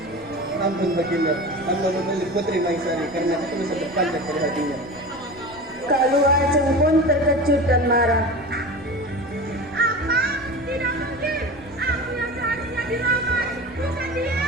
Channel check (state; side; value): noise; left; rumble, 22 dB below the sound